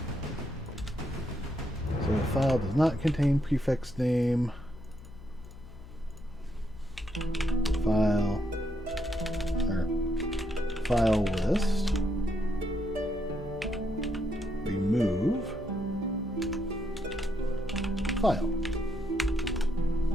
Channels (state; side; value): noise; left; hum, 16 dB below the sound